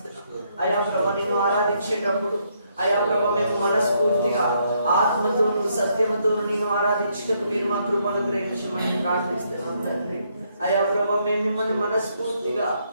అయ్యా ప్రభు నేను ఆరాధించేటప్పుడు అయ్యా ప్రభు మేము మనస్ఫూర్తిగా ఆత్మతోను సత్యముతోను నేను ఆరాధించటకు మీరు మా కృపను గ్రహించమని ప్రార్థిస్తున్నాం తండ్రి. అయ్యా ప్రభు మేము మిమ్మల్ని మనస్ఫూర్తిగా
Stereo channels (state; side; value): inverted; both; correlation -0.74